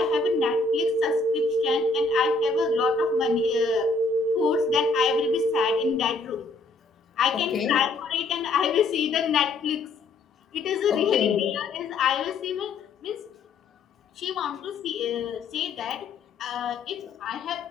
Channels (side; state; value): right; quieter; 3.6 dB